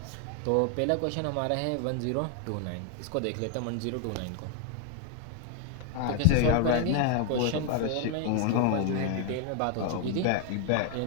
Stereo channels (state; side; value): different; both; correlation 0.01